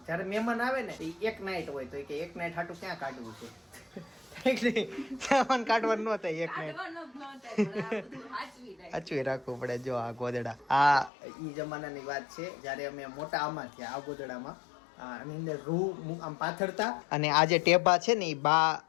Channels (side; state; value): right; drops out; at 11.1 s